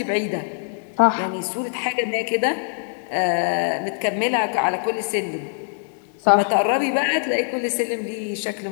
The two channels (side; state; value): right; silent; digital silence